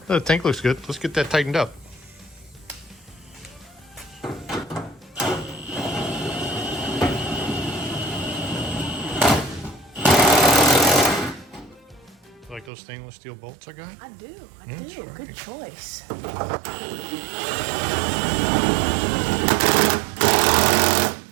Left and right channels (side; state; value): left; drops out; at 12.7 s